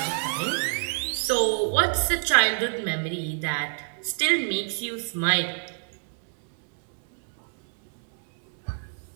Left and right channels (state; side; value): silent; left; digital silence